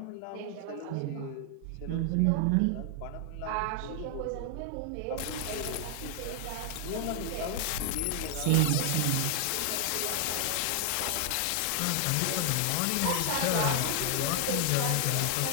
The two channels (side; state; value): both; different; correlation 0.00